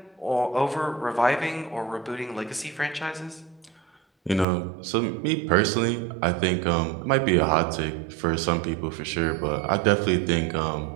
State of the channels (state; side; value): drops out; left; at 4.5 s